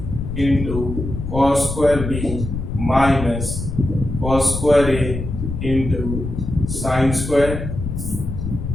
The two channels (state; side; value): noise; left; rumble, 5 dB below the sound